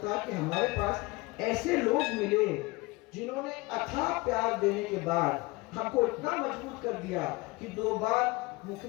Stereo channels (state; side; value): quieter; right; 23.5 dB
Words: था कि हमारे पास ऐसे लोग मिले जिन्होंने अथाह प्यार देने के बाद हमको इतना मजबूत कर दिया कि 2 बार